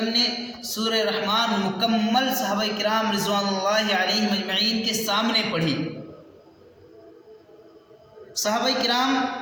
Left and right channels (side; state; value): both; identical; correlation 1.00